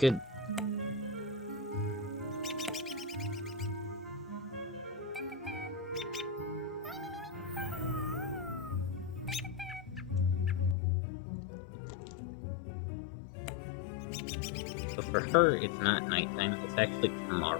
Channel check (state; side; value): drops out; right; at 10.8 s